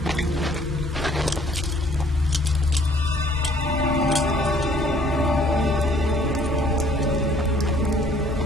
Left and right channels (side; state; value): both; normal; correlation 0.59